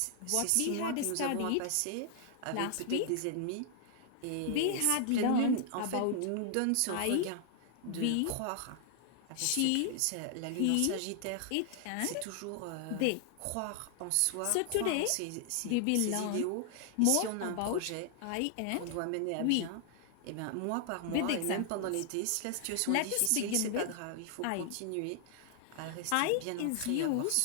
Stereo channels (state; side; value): different; both; correlation 0.00